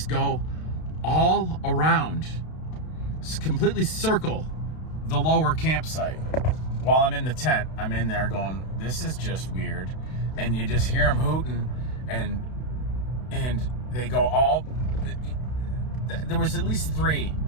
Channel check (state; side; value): late; right; 32 ms